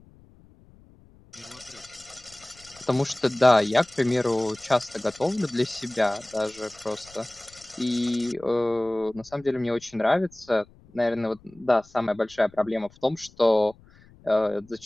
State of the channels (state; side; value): noise; left; rumble, 26 dB below the sound